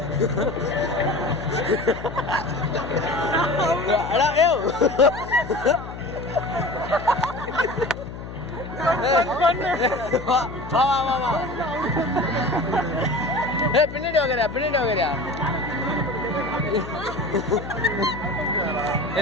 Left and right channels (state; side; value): noise; left; hum, 11 dB below the sound